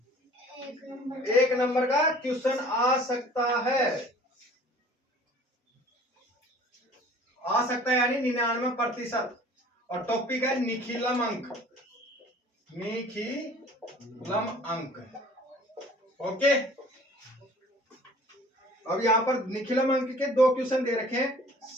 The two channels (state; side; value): normal; both; correlation 0.50